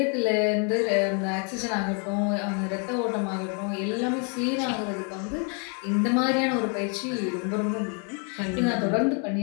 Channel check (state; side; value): quieter; right; 36.3 dB